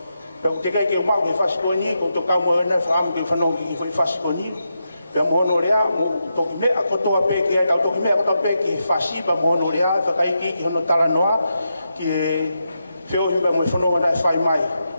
Pea te kai ke o mau ke fasi koe ni, koe to kau mo ene whaamu ke whanongi ki fo fasi koe ni. Pea mohono rea, mo toki mea kotoa peke, tau toki mea kotoa peke fasi, pa mohono rea, whakaiki ki hono tala noa, ki whio himba mo whanonga nai whai mai,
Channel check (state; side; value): inverted; both; correlation -0.86